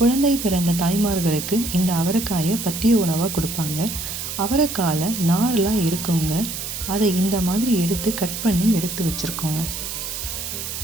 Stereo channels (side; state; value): right; noise; hiss, 6 dB below the sound